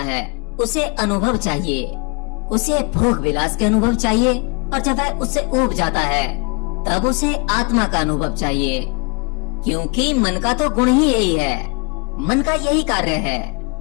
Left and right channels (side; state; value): right; quieter; 31.4 dB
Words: उसे अनुभव चाहिए, उसे भोग विलास के अनुभव चाहिए, और जब वह उससे ऊब जाता है तब उसे आत्मा का अनुभव चाहिए। क्योंकि मन का तो गुण ही यही है, मन का यही कार्य है।